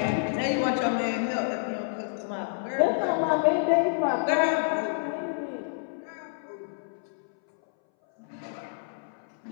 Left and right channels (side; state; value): right; silent; 59 dB below the other